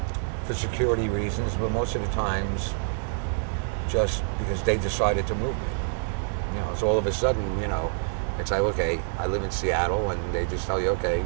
for security reasons, but most of the times just because they decided to move me. You know, so all of a sudden, you know, it's like, okay, I live in Seattle, and they just tell you, okay,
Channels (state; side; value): silent; left; 60 dB below the other